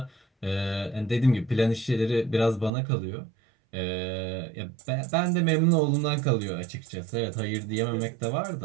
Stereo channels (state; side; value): drops out; left; at 2.7 s